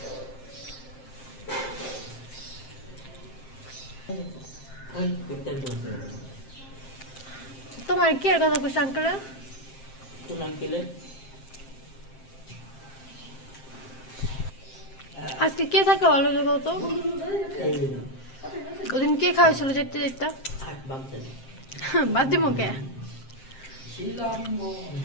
তোমার কি আর কথা কইছ আঙ্কেল আজকে কে থাকে ভালো জায়গা তো ওদিন কে খাওয়াইছিল যেতে যেতে বাদ দিব কে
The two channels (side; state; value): right; late; 7.6 ms